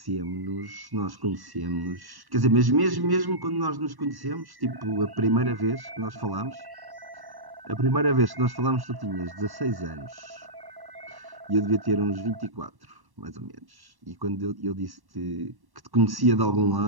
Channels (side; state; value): left; late; 1.1 ms